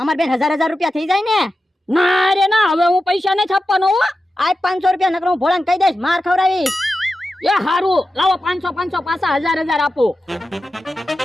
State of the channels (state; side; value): normal; both; correlation 0.92